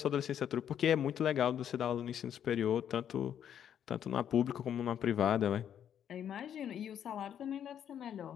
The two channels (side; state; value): right; quieter; 9.4 dB